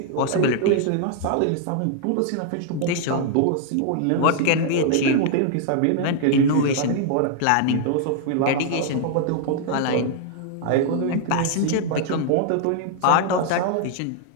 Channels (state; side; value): different; both; correlation 0.00